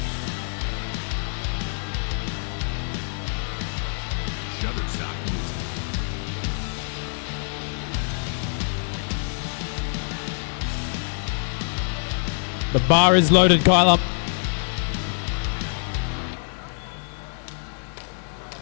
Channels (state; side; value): silent; right; digital silence